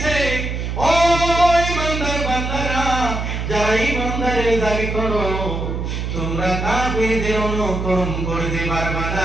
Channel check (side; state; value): right; noise; hum, 3 dB below the sound